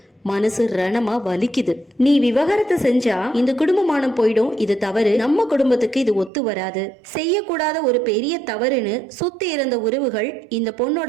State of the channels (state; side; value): drops out; left; at 6.3 s